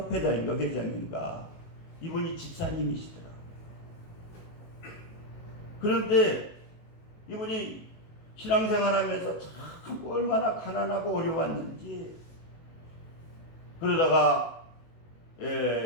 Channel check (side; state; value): right; late; 19 ms